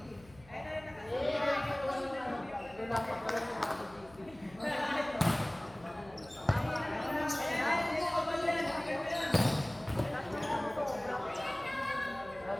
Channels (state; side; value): noise; left; hum, 23 dB below the sound